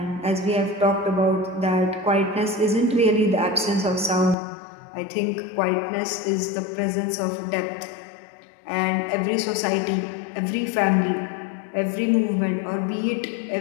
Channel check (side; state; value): right; drops out; at 4.4 s